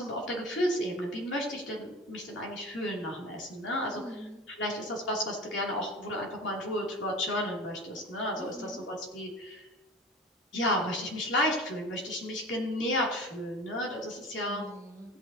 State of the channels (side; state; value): both; normal; correlation 0.36